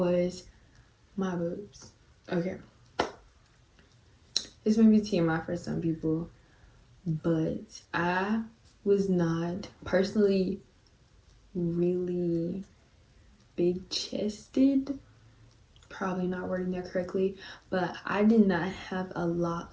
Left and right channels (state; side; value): identical; both; correlation 1.00